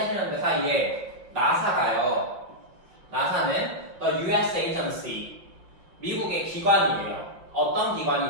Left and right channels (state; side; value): late; left; 6.6 ms